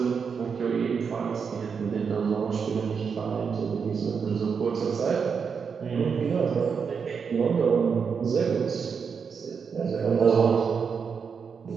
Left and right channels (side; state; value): left; quieter; 6.1 dB